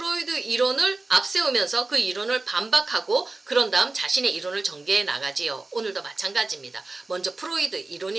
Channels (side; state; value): left; quieter; 3.4 dB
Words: 이론을 앞세우면서 그 이론을 반박하고 그런 다음 자신의 이론을 전개해 나가지요. 오늘도 마찬가지입니다. 먼저 프로이드